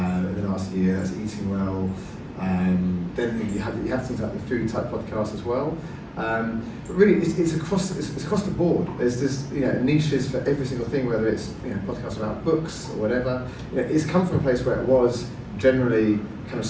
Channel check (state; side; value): identical; both; correlation 1.00